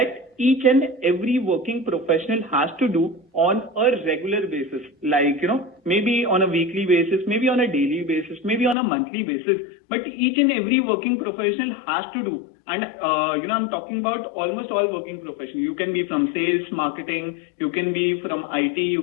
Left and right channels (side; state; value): right; drops out; at 8.8 s